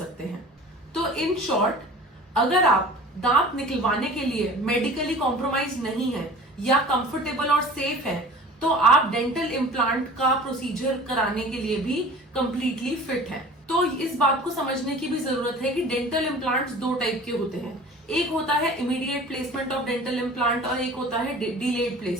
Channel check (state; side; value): normal; both; correlation 0.43